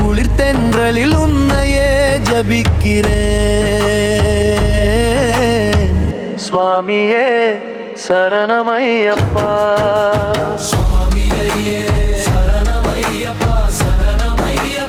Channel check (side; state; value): both; identical; correlation 1.00